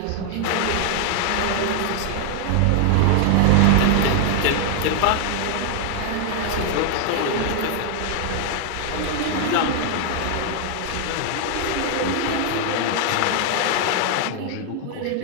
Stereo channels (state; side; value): different; both; correlation 0.00